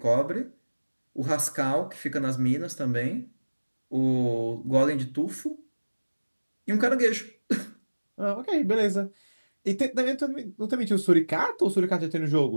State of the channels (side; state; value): both; inverted; correlation -1.00